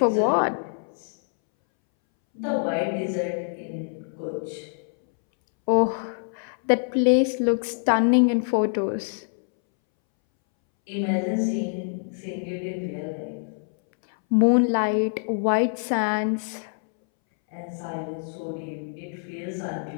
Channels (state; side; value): silent; right; 62 dB below the other